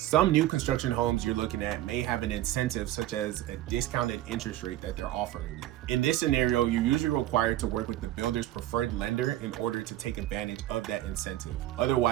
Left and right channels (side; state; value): left; quieter; 14.3 dB